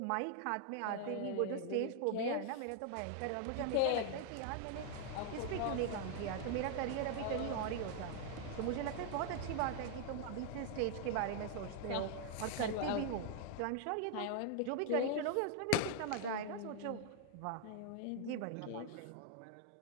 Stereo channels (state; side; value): different; both; correlation 0.00